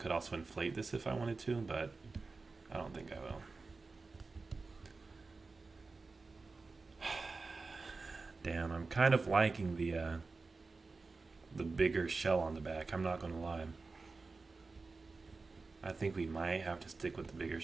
also inflate this if I wanted to, but I don't think I will. Damn, I'm kind of liking the bigger shell on the back. I'm not gonna lie. I think we might have to stick with the bigger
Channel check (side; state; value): left; quieter; 3.9 dB